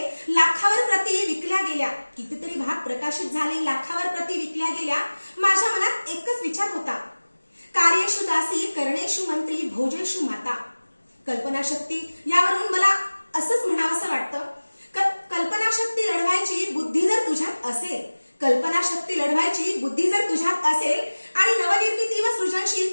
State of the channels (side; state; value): both; inverted; correlation -1.00